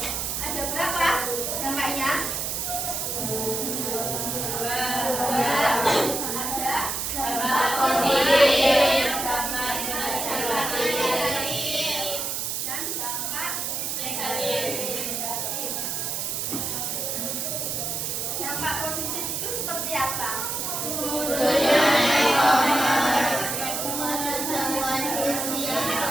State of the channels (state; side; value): noise; right; hiss, 2 dB below the sound